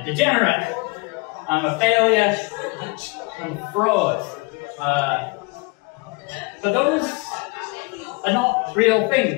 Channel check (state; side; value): quieter; right; 27.7 dB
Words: a degenerate. I'm a failure. I'm a fraud. But those are not real